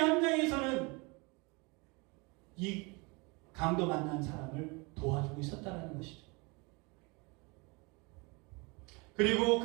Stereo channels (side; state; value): left; quieter; 28.3 dB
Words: 이 강도 만난 사람을 도와주고 있었다는 것이죠. 그리고